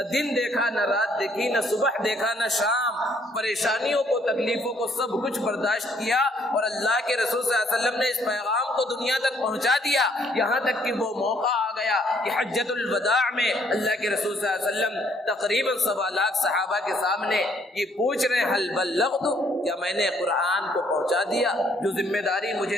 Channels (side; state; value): both; normal; correlation 0.66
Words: دن دیکھا، نہ رات دیکھی، نہ صبح دیکھا، نہ شام، پریشانیوں کو، تکلیفوں کو سب کچھ برداشت کیا. اور اللہ کے رسول صلی اللہ علیہ وسلم نے اس پیغام کو دنیا تک پہنچا دیا، یہاں تک کہ وہ موقع آ گیا کہ حجۃ الوداع میں اللہ کے رسول صلی اللہ علیہ وسلم تقریباً 1.25 لاکھ صحابہ کے سامنے یہ پوچھ رہے ہیں، حل بلغت، کیا میں نے قرآن کو پہنچا دیا؟ جو ذمہ داری